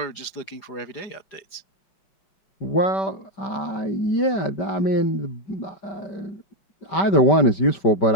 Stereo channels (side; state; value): right; late; 4.9 ms